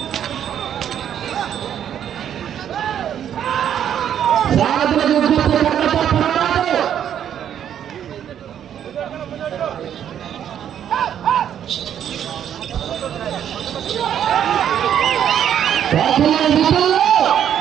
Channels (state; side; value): quieter; left; 9.6 dB